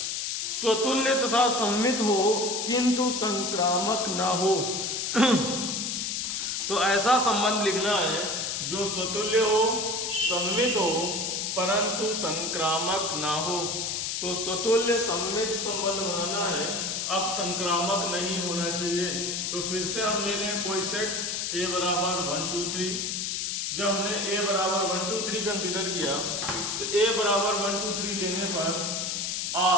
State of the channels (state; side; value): noise; left; hiss, 1 dB below the sound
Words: स्वतुल्य तथा सममित हो किंतु संक्रामक ना हो। तो ऐसा संबंध लिखना है जो स्वतुल्य हो, सममित हो परंतु संक्रामक ना हो। तो स्वतुल्य सममित संबंध बनाना है, अब संक्रामक नहीं होना चाहिए। तो फिर से हम ले लें कोई सेट A बराबर 1 2 3, जब हमने a बराबर 1 2 3 कंसीडर किया तो a बराबर 1 2 3 लेने पर